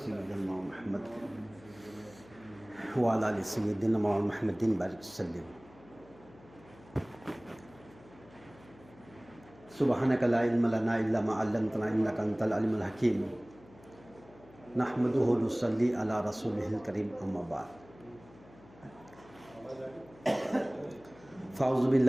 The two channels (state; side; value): noise; left; hum, 23 dB below the sound